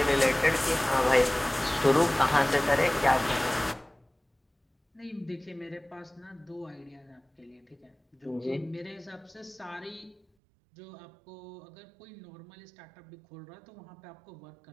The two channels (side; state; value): left; drops out; at 10.2 s